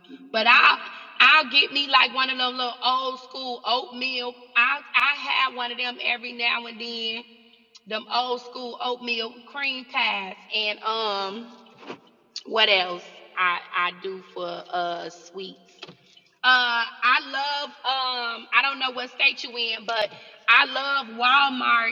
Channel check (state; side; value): identical; both; correlation 1.00